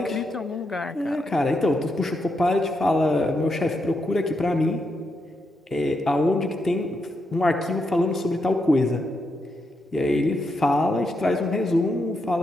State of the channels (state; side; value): normal; both; correlation 0.83